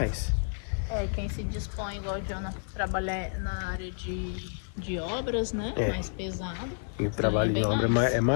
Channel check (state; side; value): silent; right; digital silence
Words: Quem se dispõe, igual o Jonathan, trabalhar na área de obras, né? Mais pesado. E o trabalho de obra é